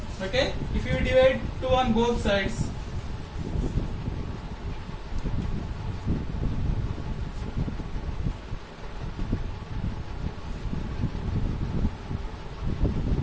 Okay, if you divide 2 on both sides,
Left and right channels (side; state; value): both; identical; correlation 1.00